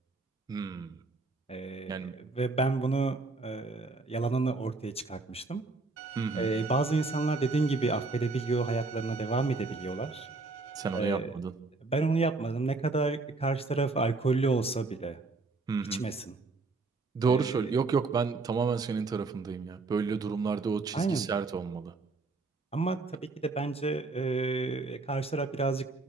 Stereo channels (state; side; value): quieter; left; 3.7 dB